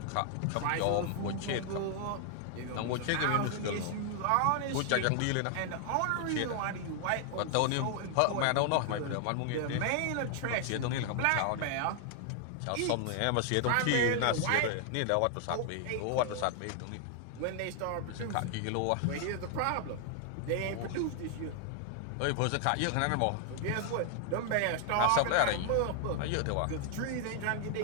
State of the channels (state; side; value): different; both; correlation 0.00